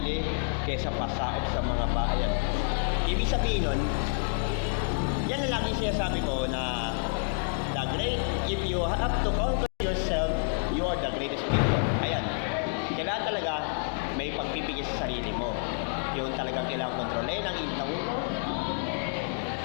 kaysa pasaot sa mga bayan. Ibig sabihin nun, yan ang lagi sinasabi ko na if you have to conquer yourself, you are the greatest people. Ayan, kailangan talaga may pagpipigil sa sarili mo. Yung talagang kailangan kontrolin ang init ng ulo.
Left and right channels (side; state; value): right; silent; digital silence